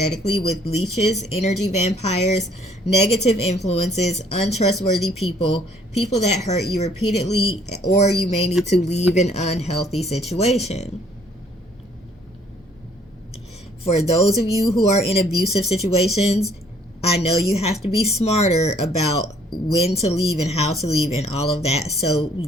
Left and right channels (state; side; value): normal; both; correlation 0.62